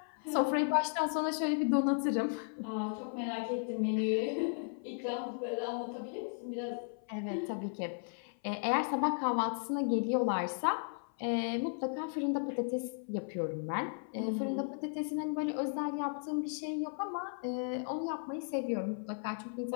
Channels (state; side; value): silent; right; 54 dB below the other